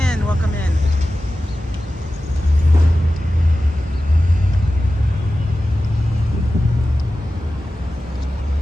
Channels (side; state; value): both; normal; correlation 0.94